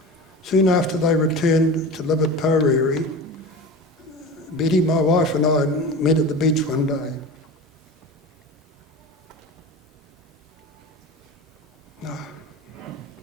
Soon after they returned to live at Poreri, Betty, my wife, and I met at the beach one day.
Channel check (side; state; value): both; normal; correlation 0.31